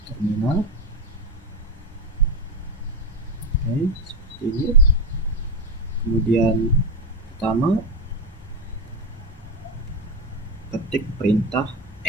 terminal. Oke, seperti ini. Kemudian pertama, ketik perintah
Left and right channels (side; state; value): both; normal; correlation 0.13